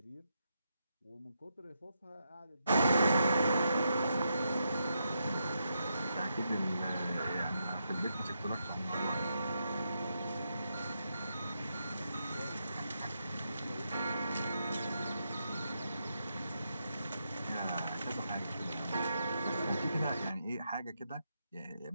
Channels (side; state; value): both; inverted; correlation -0.82